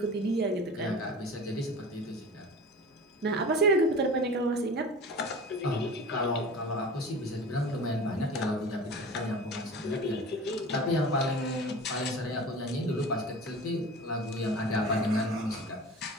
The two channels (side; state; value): both; normal; correlation 0.36